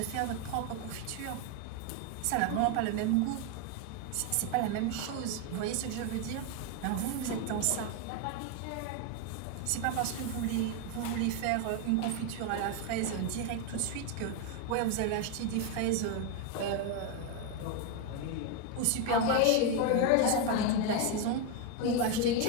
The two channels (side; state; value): both; different; correlation 0.02